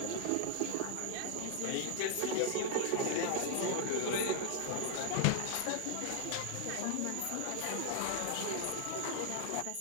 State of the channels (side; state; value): both; different; correlation 0.00